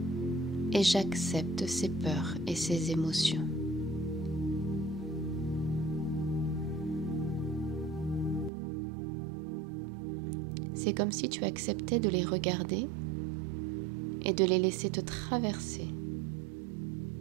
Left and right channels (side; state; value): left; drops out; at 8.5 s